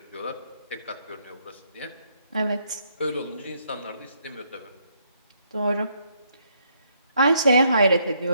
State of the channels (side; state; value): both; inverted; correlation -0.73